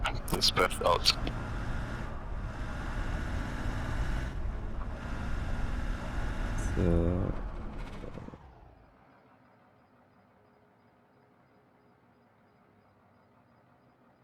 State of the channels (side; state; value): both; identical; correlation 1.00